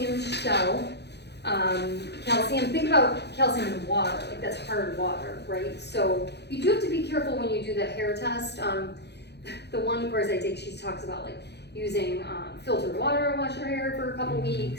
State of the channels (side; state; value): right; late; 0.49 ms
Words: shell. Calcium, think about calcium in water, like that's hard water, right? So you do have to be careful when you do the hair test. The one course I take, she talks about like using filtered water to wash your hair for a couple